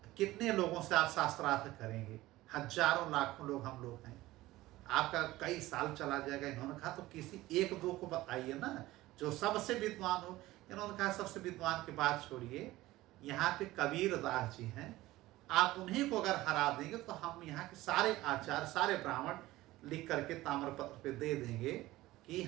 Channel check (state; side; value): quieter; left; 17.4 dB